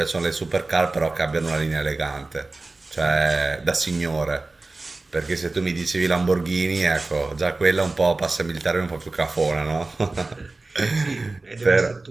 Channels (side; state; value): left; quieter; 3.3 dB